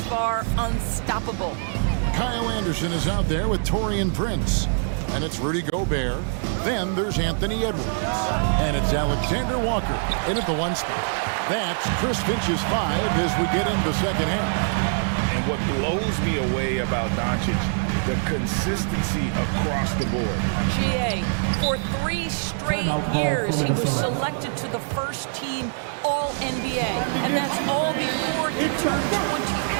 far, unstoppable. Kyle Anderson is out there with Taurean Prince. And it's Rudy Gobert. Then there's Anthony Edwards. And it's Alexander Walker in at the 1 spot. That's Chris Finch's 5 as we get into the second half. And what blows me away about Doncic, the consistency across the board. GA, for 3 straight years, he was selected to the first team All-NBA. And that's all before he turned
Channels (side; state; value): left; silent; digital silence